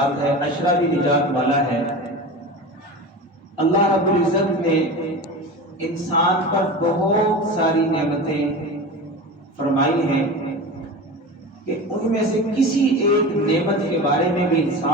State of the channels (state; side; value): normal; both; correlation 0.30